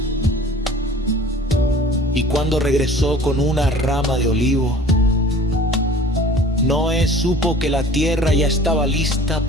Y cuando regresó con una rama de olivo, Noé supo que la tierra ya estaba lista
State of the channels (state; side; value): normal; both; correlation 0.47